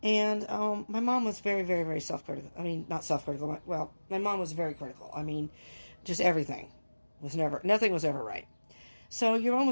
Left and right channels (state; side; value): inverted; both; correlation -1.00